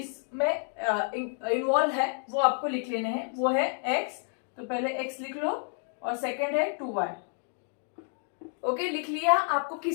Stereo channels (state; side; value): silent; right; 55 dB below the other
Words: इन्वॉल्व है वो आपको लिख लेने हैं. वो है x, तो पहले x लिख लो और सेकेंड है 2y. ओके, लिख लिया. आपको